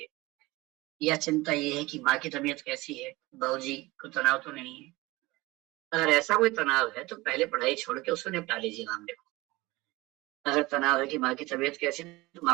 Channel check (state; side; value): quieter; left; 21.0 dB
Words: या चिंता ये है कि माँ की तबीयत कैसी है, बाबूजी को तनाव तो नहीं है। अगर ऐसा कोई तनाव है तो पहले पढ़ाई छोड़ के उसको निपटा लीजिए मामले को। अगर तनाव है कि माँ की तबीयत कैसी है तो